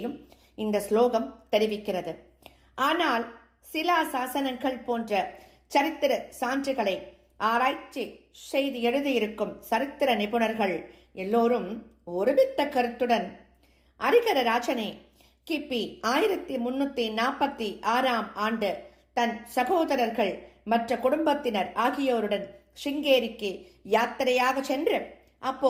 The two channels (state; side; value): identical; both; correlation 1.00